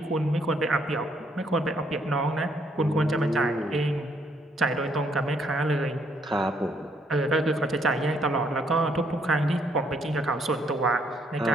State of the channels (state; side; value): normal; both; correlation 0.70